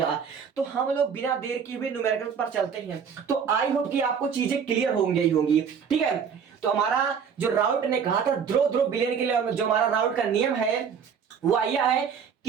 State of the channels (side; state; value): left; quieter; 6.9 dB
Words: तो हम लोग बिना देर किए हुए न्यूमेरिकल पर चलते हैं। तो आई होप कि आपको चीजें क्लियर होंगी ही होंगी। ठीक है, तो हमारा जो राउट ने कहा था ध्रुव ध्रुव बिलियन के लिए, जो हमारा राउट का नियम है वो यह है,